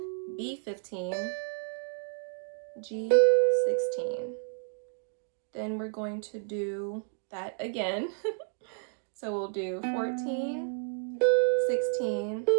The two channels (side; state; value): left; silent; digital silence